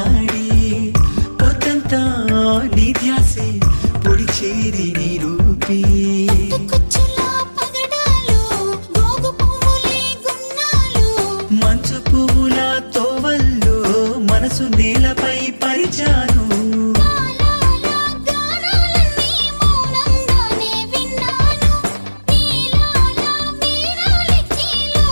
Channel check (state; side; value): inverted; both; correlation -1.00